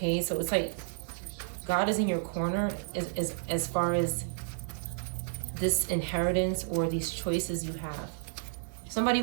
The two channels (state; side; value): silent; left; 57 dB below the other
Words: so it's like God is in your corner as far as this inheritance or these choices you have. Somebody